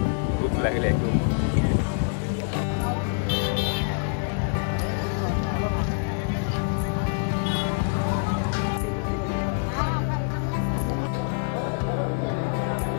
भूक लागली आहे खूप.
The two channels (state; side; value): silent; right; digital silence